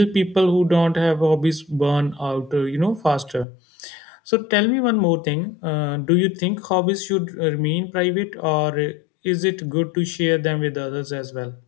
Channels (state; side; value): drops out; right; at 3.5 s